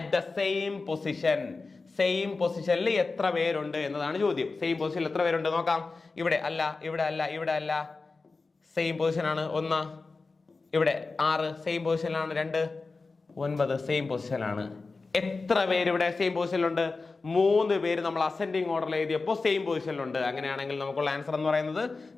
the same position? Same പൊസിഷനിൽ എത്ര പേരുണ്ട് എന്നതാണ് ചോദ്യം. സെയിം പൊസിഷനിൽ എത്ര പേരുണ്ട് നോക്കാം. ഇവിടെ അല്ല, ഇവിടെ അല്ല, ഇവിടെ അല്ല, സെയിം പൊസിഷനാണ് 1. ഇവിടെ 6 സെയിം പൊസിഷനിലാണ്. 2 9 സെയിം പൊസിഷനിലാണ്. എത്ര പേര് ഇവിടെ സെയിം പൊസിഷനിലുണ്ട്? 3 പേര് നമ്മൾ അസെൻഡിങ് ഓർഡറിൽ എഴുതിയപ്പോൾ സെയിം പൊസിഷനിലുണ്ട്. അങ്ങനെയാണെങ്കിൽ നമുക്കുള്ള ആൻസർ എന്ന് പറയുന്നത്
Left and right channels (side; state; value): right; quieter; 3.9 dB